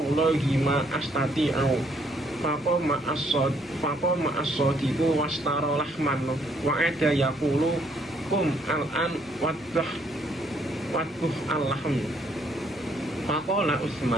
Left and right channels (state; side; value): noise; left; rumble, 27 dB below the sound